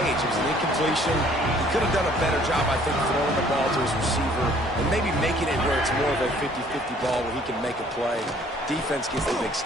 It was an incompletion. He could have done a better job, I think, throwing the ball to his receiver and maybe making it where it's more of a 50-50 ball where he can make a play. Defense gets the big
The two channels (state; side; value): normal; both; correlation 0.58